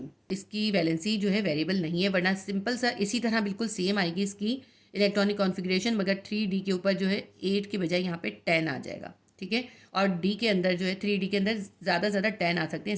इसकी वैलेंसी जो है वेरिएबल नहीं है, वरना सिंपल सा इसी तरह बिल्कुल सेम आएगी इसकी इलेक्ट्रॉनिक कॉन्फ़िगरेशन, मगर 3d के ऊपर जो है 8 के बजाय यहाँ पे 10 आ जाएगा। ठीक है, और d के अंदर जो है 3d के अंदर ज़्यादा 10 आ सकते हैं,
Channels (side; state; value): both; identical; correlation 1.00